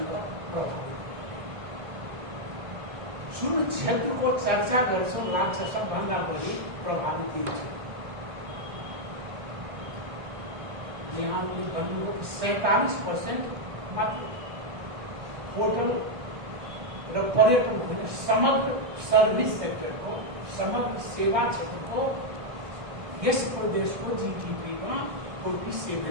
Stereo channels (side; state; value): left; late; 1.6 ms